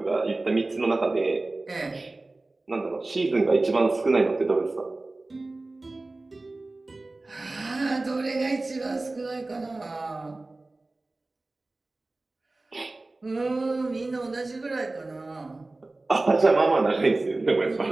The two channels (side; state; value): left; quieter; 3.1 dB